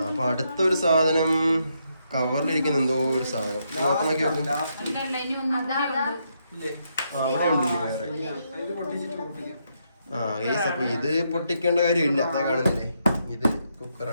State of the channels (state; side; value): inverted; both; correlation -0.78